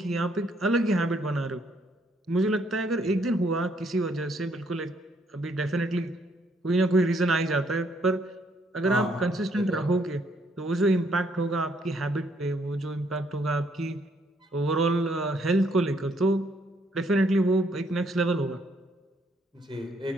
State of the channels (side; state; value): both; normal; correlation 0.70